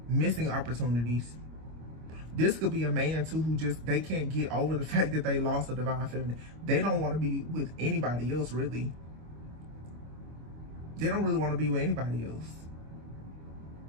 missing opportunities. This could be a man too who just, they can't get over the fact that they lost a divine feminine. They don't want to be with anybody else, really. They don't really want to be with anybody else.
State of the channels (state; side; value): late; left; 25 ms